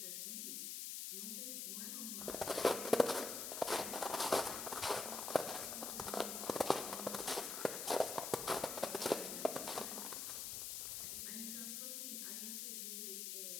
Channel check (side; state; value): left; noise; hiss, 3 dB below the sound